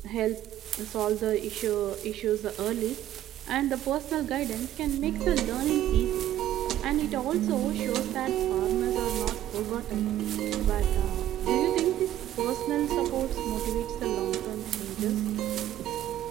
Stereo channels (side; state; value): left; quieter; 12.6 dB